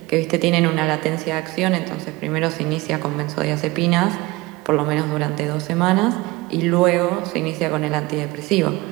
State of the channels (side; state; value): left; quieter; 21.4 dB